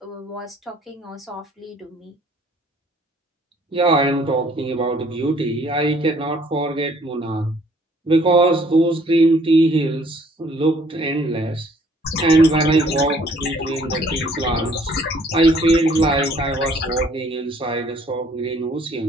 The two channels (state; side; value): normal; both; correlation 0.60